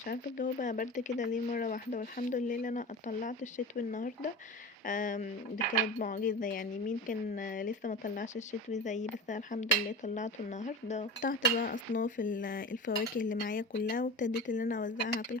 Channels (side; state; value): both; normal; correlation 0.30